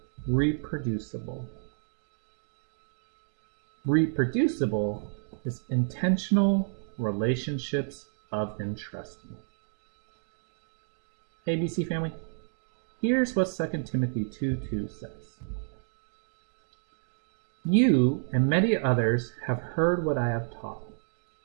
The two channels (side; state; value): left; silent; digital silence